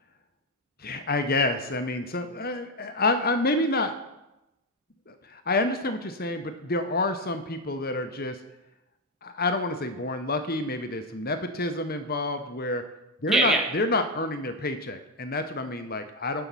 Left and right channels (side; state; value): both; normal; correlation 0.05